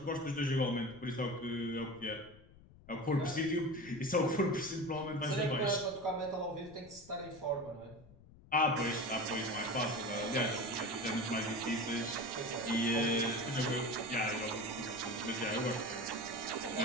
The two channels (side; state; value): left; noise; rumble, 22 dB below the sound